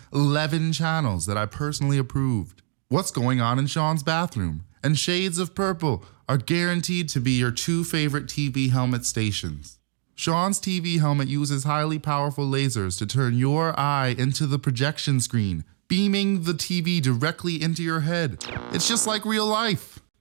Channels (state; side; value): silent; left; digital silence